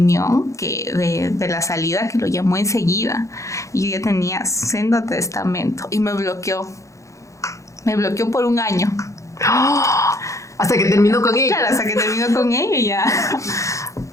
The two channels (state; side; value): late; right; 0.15 ms